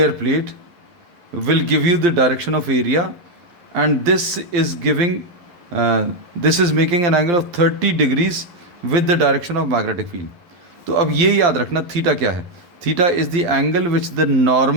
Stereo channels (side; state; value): left; late; 11 ms